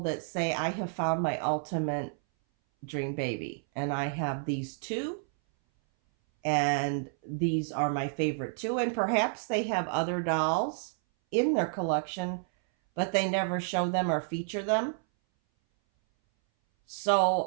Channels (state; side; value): silent; left; 58 dB below the other